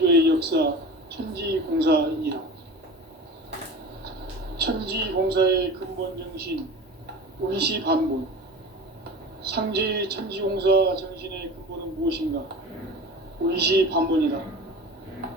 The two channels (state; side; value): normal; both; correlation 0.34